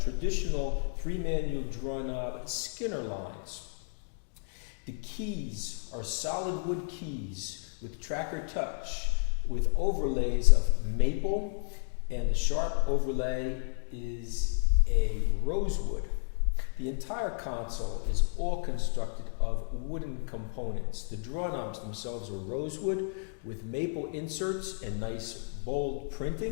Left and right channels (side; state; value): right; silent; 57 dB below the other